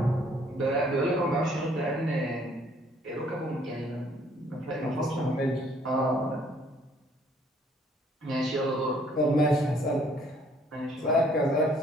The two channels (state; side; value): normal; both; correlation 0.62